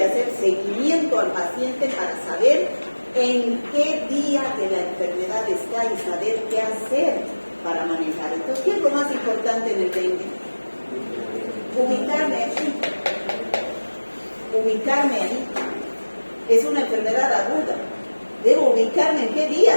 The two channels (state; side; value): inverted; both; correlation -1.00